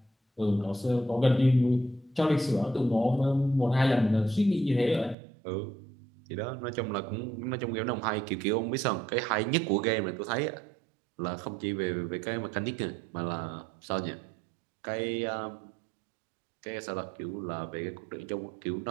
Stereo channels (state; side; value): drops out; left; at 5.2 s